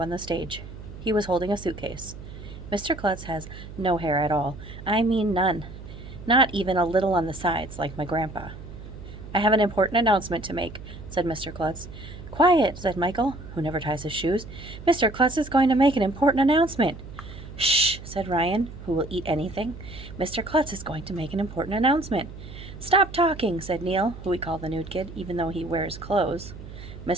the stage. He was holding a suitcase. Mr. Klutz has no hair at all. I mean none. Not even a little on the sides, like my grandpa. I have an important announcement to make, said Mr. Klutz. Quiet, said Michael, who never ties his shoes. Mr. Klutz is going to make an important announcement. Shh, said Ryan, who will eat anything. Mr. Klutz is going to make an important announcement. Stop talking, said Neil, who we call the nude kid, even though he wears clothes.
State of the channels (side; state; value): right; noise; hum, 13 dB below the sound